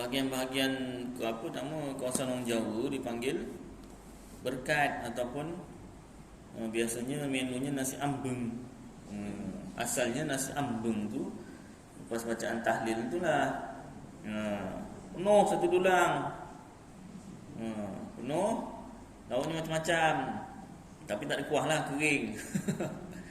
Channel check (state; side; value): identical; both; correlation 1.00